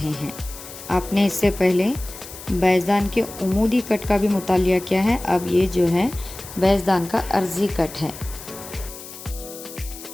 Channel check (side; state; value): left; noise; hiss, 14 dB below the sound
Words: हैं। आपने इससे पहले बैज़दान के उमूदी कट का भी मुतालिया किया है। अब ये जो है बैजदान का अर्जी कट है।